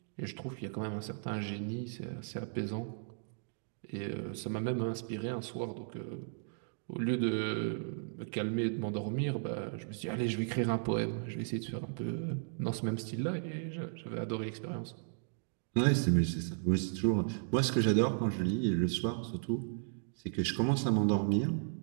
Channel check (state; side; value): silent; left; digital silence